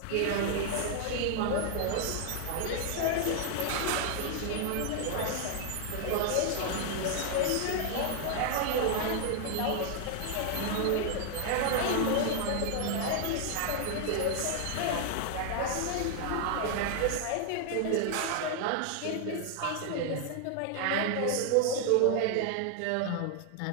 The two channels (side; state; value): both; different; correlation 0.00